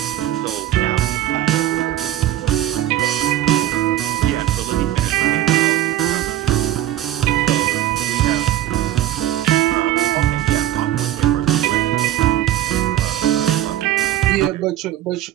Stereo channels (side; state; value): left; quieter; 13.0 dB